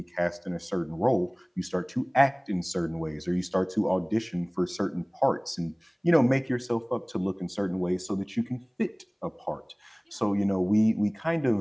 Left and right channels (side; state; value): both; identical; correlation 1.00